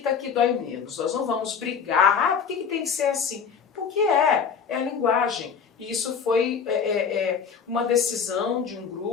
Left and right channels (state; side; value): quieter; right; 6.5 dB